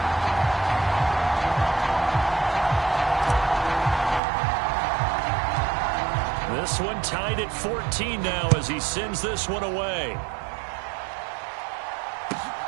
This one tied at 14 now as he sends this one away.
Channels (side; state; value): left; drops out; at 4.2 s